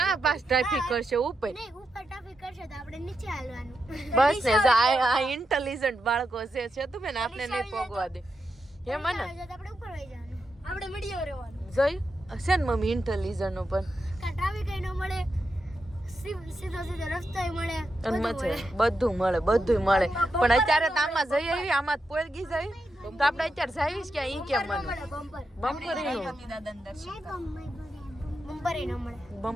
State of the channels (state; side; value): normal; both; correlation 0.86